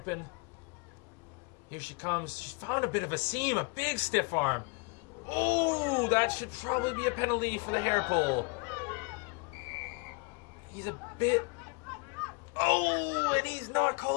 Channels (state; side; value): quieter; right; 31.0 dB